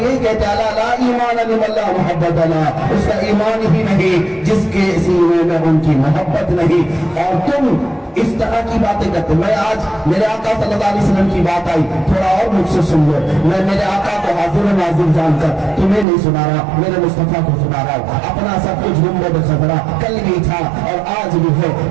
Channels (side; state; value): left; drops out; at 16.1 s